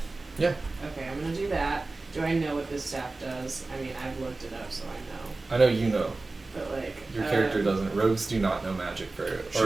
Yeah. Okay, I'm gonna do that. Do I know what this staff does? I mean, I've looked it up, so I know. I know you know. But like. Your character doesn't. Rogues do not know magic very.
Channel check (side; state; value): left; quieter; 3.3 dB